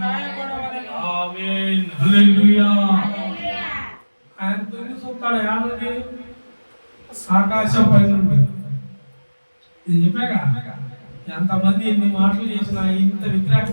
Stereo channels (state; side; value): inverted; both; correlation -1.00